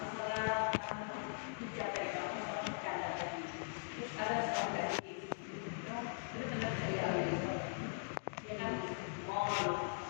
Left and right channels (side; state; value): right; silent; digital silence